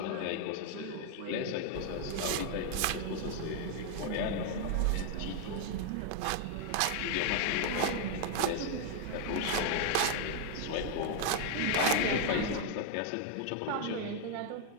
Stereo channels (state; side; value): different; both; correlation 0.00